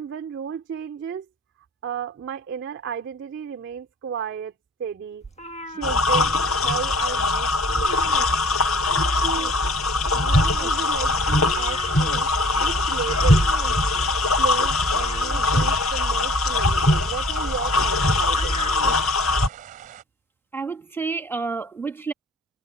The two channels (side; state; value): both; normal; correlation 0.51